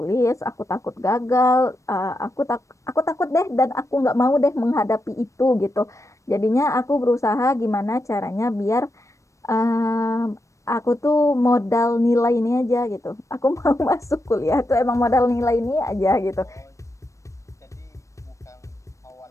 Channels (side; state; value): right; late; 0.15 ms